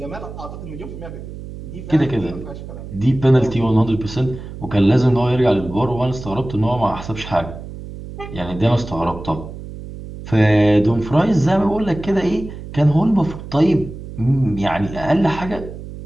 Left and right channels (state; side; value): noise; right; hum, 12 dB below the sound